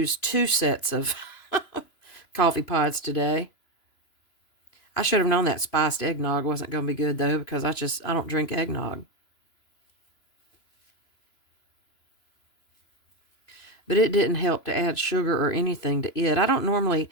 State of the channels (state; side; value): late; right; 2.9 ms